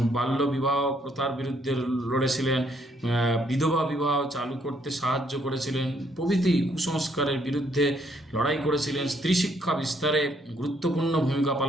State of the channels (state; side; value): normal; both; correlation 0.69